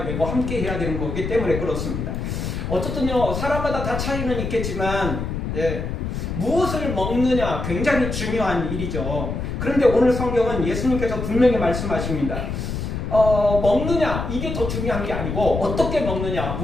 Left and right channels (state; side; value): noise; left; rumble, 4 dB below the sound